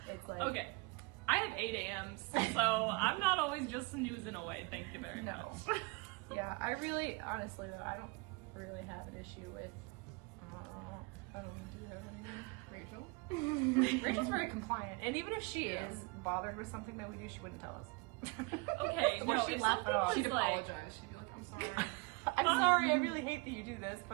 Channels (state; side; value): quieter; left; 28.8 dB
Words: it's like Okay. I have 8 a.m.s, so I'm not always just snoozing away. Thank you very No. much. Yeah, I really, honestly though, I don't really have an issue with. I don't do you have anything. Rachel? Rachel's very compliant, and even if she is bothered with something that we do, she wouldn't tell us. Okay, no, she'd if laugh it something off. was She'd like, apologize. She'd be like, I'm sorry. I'm sorry, I really hate that you do this,